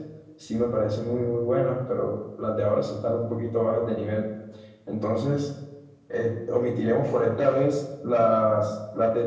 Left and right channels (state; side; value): identical; both; correlation 1.00